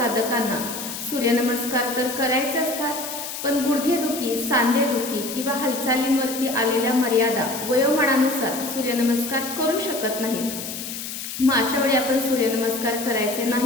सूर्यनमस्कार तर करायचे असतात, पण गुडघेदुखी, सांधेदुखी किंवा हालचालींवरती आलेल्या मर्यादा वयोमानानुसार सूर्यनमस्कार करू शकत नाहीत. मग अशा वेळी आपण सूर्यनमस्कार करायचे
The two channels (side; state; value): left; noise; hiss, 7 dB below the sound